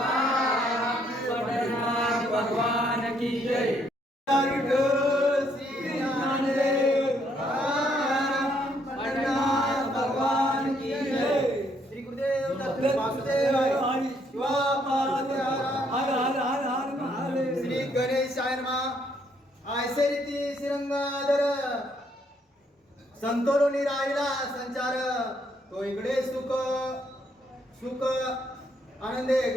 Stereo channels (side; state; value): both; normal; correlation 0.70